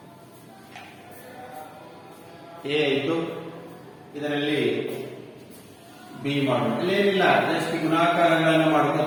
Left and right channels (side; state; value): both; identical; correlation 1.00